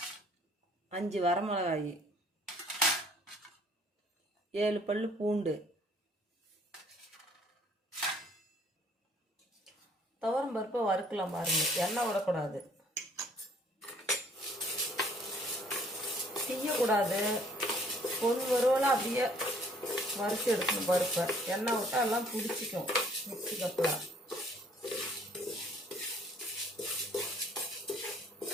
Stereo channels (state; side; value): normal; both; correlation 0.59